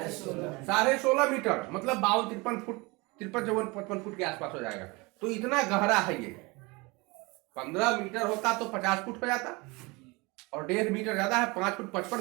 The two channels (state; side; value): quieter; left; 25.5 dB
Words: 16.5 मीटर, मतलब 52-53 फुट, 53-54-55 फुट के आसपास हो जाएगा। तो इतना गहरा है ये। 15 मीटर होता तो 50 फुट हो जाता, और 1.5 मीटर ज्यादा है, 5 फुट